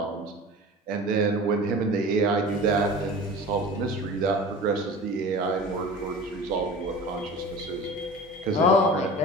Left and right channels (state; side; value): normal; both; correlation 0.37